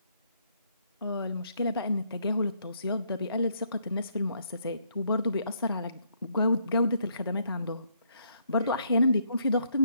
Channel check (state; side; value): inverted; both; correlation -0.72